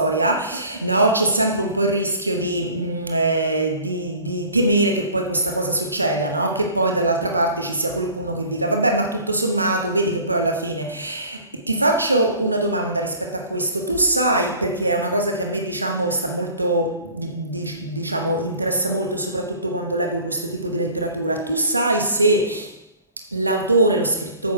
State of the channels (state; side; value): inverted; both; correlation -0.47